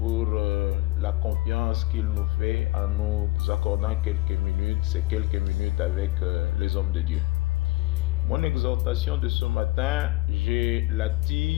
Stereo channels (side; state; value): right; quieter; 19.7 dB